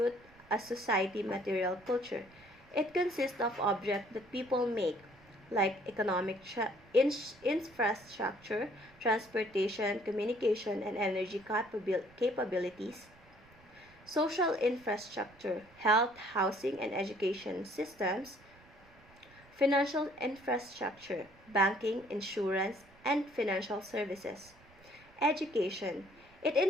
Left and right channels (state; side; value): noise; right; rumble, 26 dB below the sound